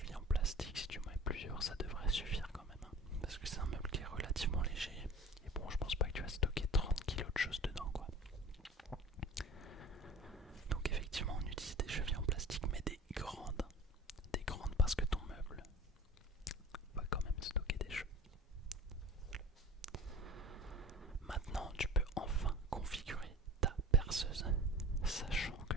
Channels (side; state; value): both; normal; correlation 0.40